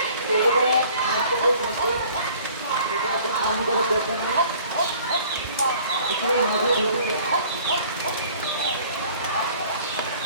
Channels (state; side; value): inverted; both; correlation -0.52